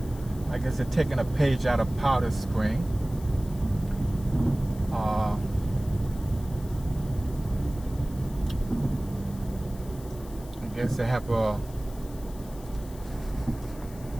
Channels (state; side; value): noise; left; hiss, 21 dB below the sound